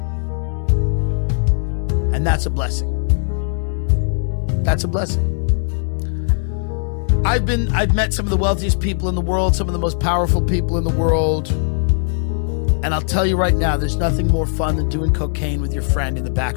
And that's a blessing. That's a blessing. I've met some of the wealthiest people in the world, some of the most powerful people in the world. And I'll tell you right now, there's nothing more fun than doing cocaine with your friend in the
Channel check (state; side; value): silent; right; 67 dB below the other